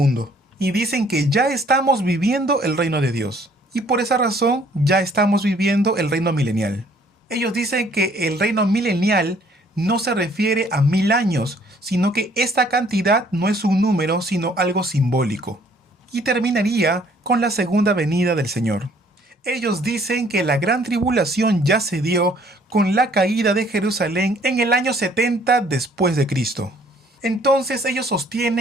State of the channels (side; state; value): both; normal; correlation 0.60